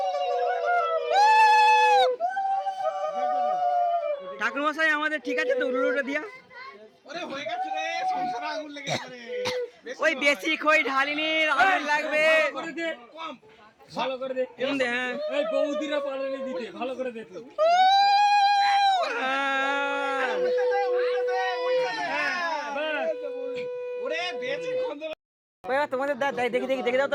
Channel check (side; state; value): both; identical; correlation 1.00